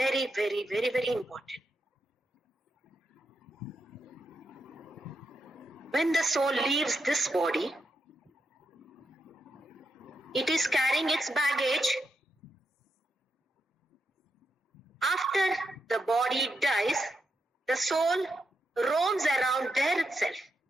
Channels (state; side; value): normal; both; correlation 0.84